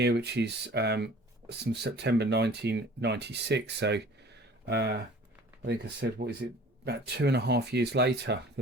which is from September 1996. So I think I said, what is it, about 2.5 years later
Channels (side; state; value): both; normal; correlation 0.47